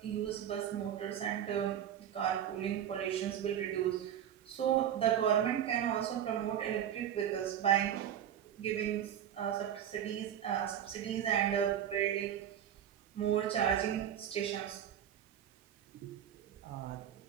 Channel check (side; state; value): left; quieter; 10.0 dB